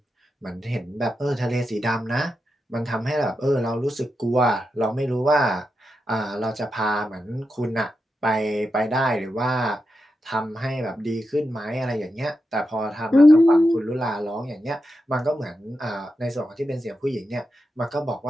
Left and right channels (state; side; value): normal; both; correlation 0.88